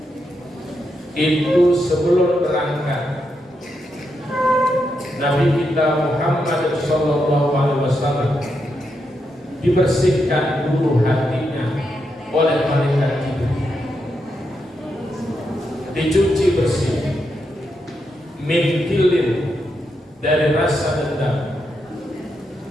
itu sebelum berangkat Nabi kita Muhammad sallallahu alaihi wasallam dibersihkan dulu hatinya oleh malaikat Jibril, dicuci bersih min kilin dari rasa dendam,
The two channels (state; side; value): normal; both; correlation 0.83